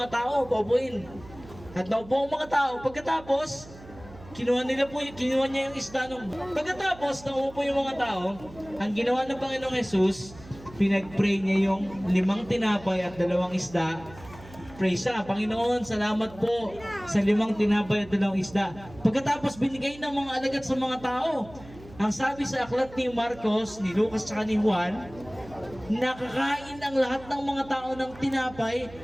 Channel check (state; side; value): noise; right; hum, 19 dB below the sound